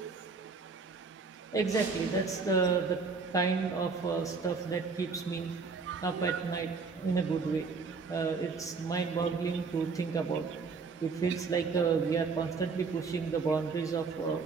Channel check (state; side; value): quieter; left; 4.7 dB